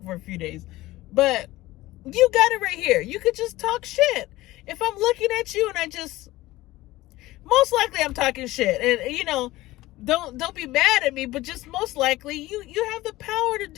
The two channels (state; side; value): quieter; right; 17.8 dB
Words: for a few days. But you got it right here. You could just talk shit. If I'm looking at you and most likely I'm talking shit. And don't be mad at me, but just most likely you have the power to